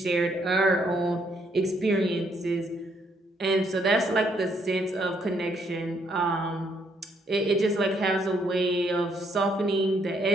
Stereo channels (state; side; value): normal; both; correlation 0.71